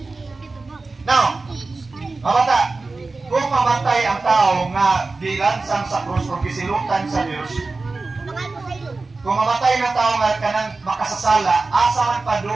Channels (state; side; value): quieter; left; 3.7 dB